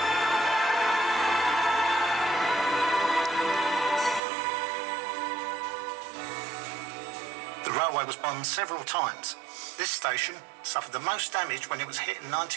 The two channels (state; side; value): drops out; left; at 4.2 s